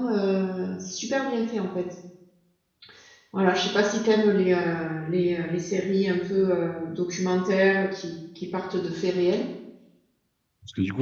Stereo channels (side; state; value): both; identical; correlation 1.00